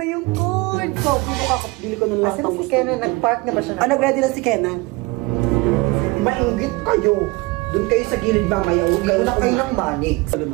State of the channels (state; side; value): quieter; left; 23.4 dB